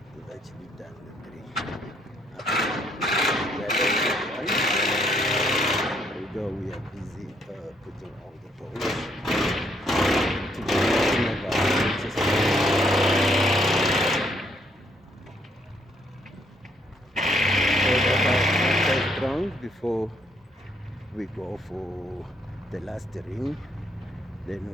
We've actually done the 3. Although we are busy putting all the poles to the bottom of our system. So that's our first round before we go for the last ring. Then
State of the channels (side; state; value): both; normal; correlation 0.71